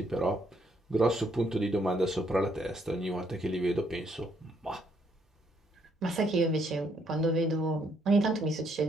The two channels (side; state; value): both; normal; correlation 0.71